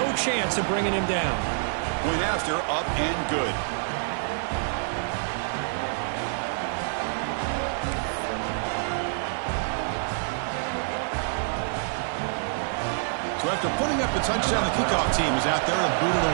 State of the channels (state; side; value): silent; left; 60 dB below the other